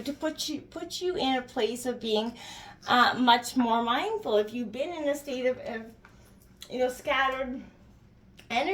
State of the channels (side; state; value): both; identical; correlation 1.00